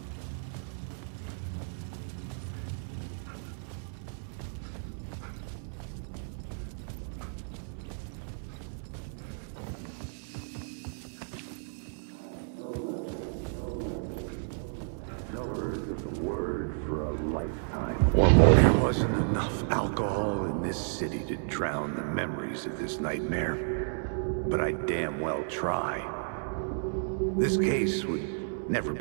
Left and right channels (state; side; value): silent; left; 57 dB below the other